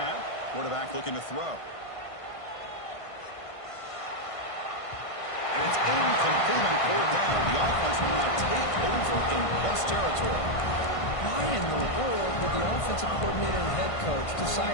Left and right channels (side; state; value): right; late; 1.5 ms